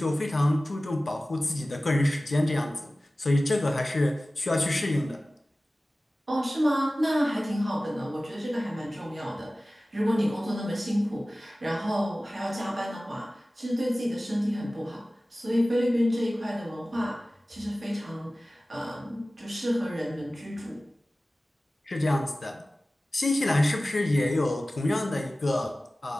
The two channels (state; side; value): normal; both; correlation 0.97